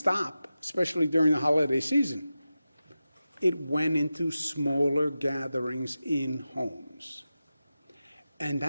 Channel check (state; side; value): inverted; both; correlation -0.93